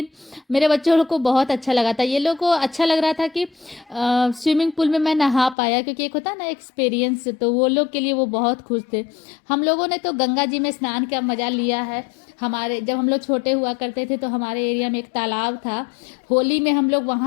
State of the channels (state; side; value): drops out; right; at 5.6 s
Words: मेरे बच्चों लोग को बहुत अच्छा लगा था। ये लोग को अच्छा लग रहा था कि स्विमिंग पूल में मैं नहा पाया, क्योंकि एक होता है ना एक्सपीरियंस, तो वो लोग के लिए वो बहुत खुश थे। हम लोगों ने तो गंगा जी में स्नान का मज़ा लिया है। हमारे जब हम लोग छोटे हुआ करते थे, तो हमारे एरिया में एक तालाब था, होली में हम लोग